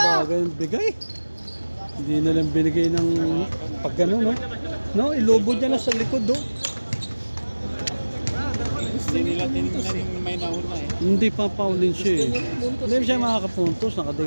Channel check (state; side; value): inverted; both; correlation -1.00